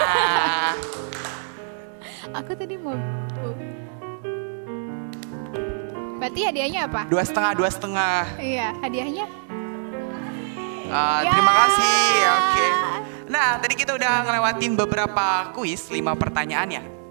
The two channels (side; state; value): left; silent; 63 dB below the other